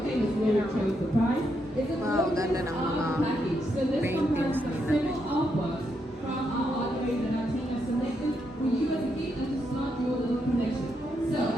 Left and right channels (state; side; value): normal; both; correlation 0.80